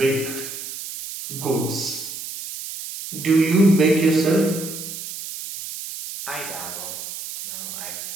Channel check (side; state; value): right; noise; hiss, 9 dB below the sound